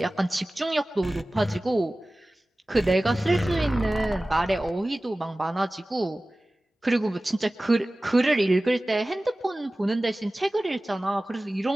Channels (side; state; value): both; normal; correlation 0.97